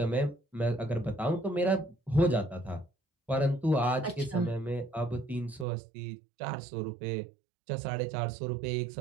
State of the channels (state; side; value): drops out; left; at 5.7 s